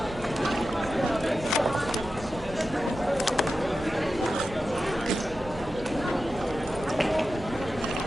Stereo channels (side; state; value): both; normal; correlation 0.92